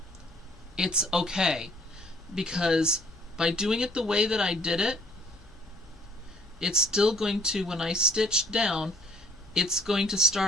It's okay, because by doing it the way that I did it, it's still going to, when I stitch down, it's going to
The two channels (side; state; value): both; normal; correlation 0.59